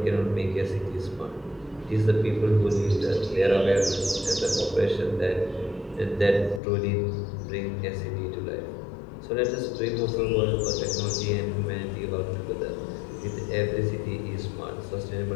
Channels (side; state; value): right; drops out; at 6.6 s